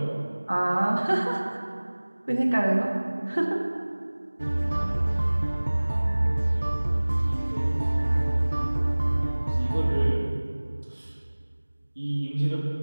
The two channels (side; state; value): both; inverted; correlation -1.00